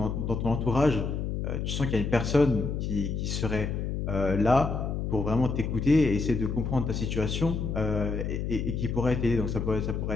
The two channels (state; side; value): noise; left; hum, 2 dB below the sound